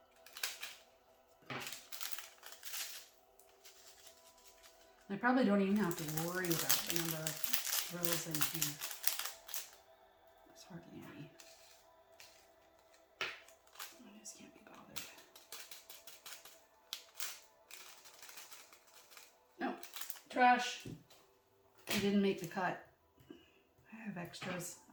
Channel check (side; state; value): both; identical; correlation 1.00